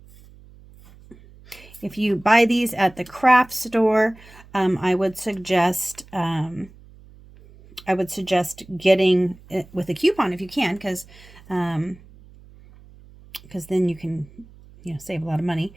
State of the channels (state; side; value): noise; right; hum, 23 dB below the sound